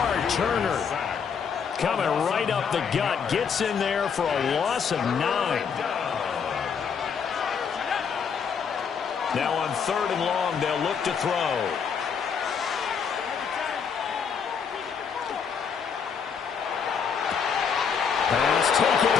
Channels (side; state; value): right; quieter; 6.6 dB